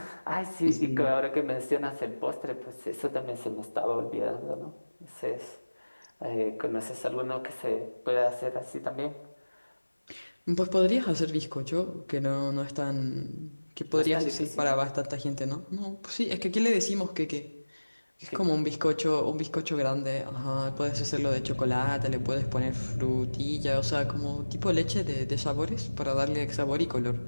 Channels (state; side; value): inverted; both; correlation -1.00